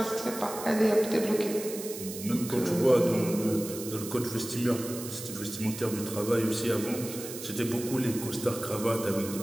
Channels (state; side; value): noise; right; hiss, 10 dB below the sound